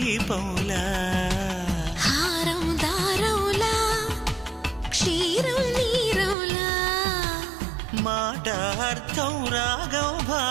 హారం దారములా క్షీరం నీరములా మాట అర్థం రాగం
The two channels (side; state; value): left; drops out; at 6.4 s